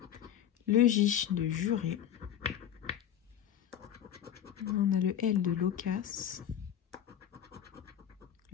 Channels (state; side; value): quieter; right; 10.0 dB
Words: le J de juré, on a le L de loquace,